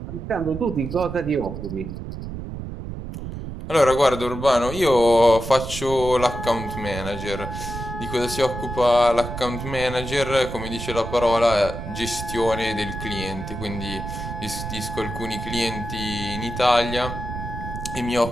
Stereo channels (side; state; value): right; noise; rumble, 8 dB below the sound